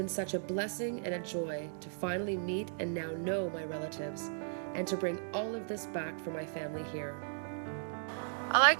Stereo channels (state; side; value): silent; left; digital silence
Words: such a blessing and a joy to finally meet and now know my relatives, and to bring all of this back for my family here. I like